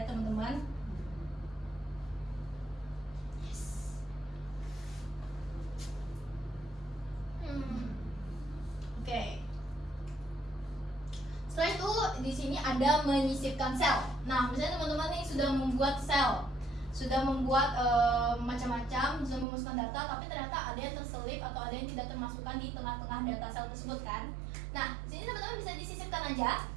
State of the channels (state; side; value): drops out; left; at 19.5 s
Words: teman-teman. Oke. Setelah itu di sini ada menyisipkan sel. Nah, misalnya teman-teman nih sudah membuat sel, sudah membuat macam-macam, sudah memasukkan data, tapi ternyata ada yang terselip atau ada yang tidak termasukkan di tengah-tengah data sel tersebut kan. Nah, di sini teman-teman bisa disisipkan aja.